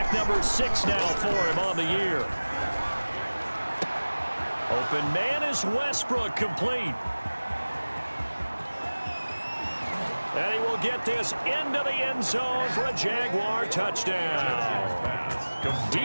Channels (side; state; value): both; inverted; correlation -1.00